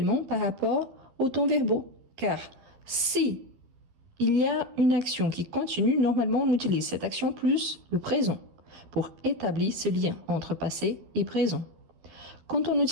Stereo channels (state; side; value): late; left; 12 ms